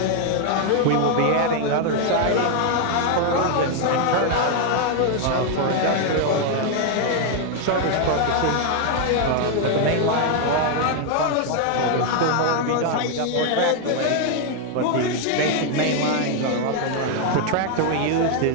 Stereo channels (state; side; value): different; both; correlation 0.00